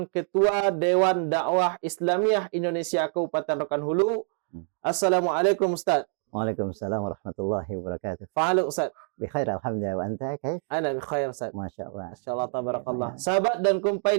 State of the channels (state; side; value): silent; left; 58 dB below the other